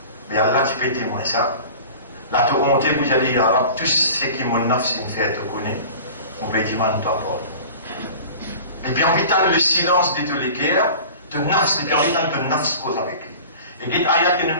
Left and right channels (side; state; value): both; inverted; correlation -0.39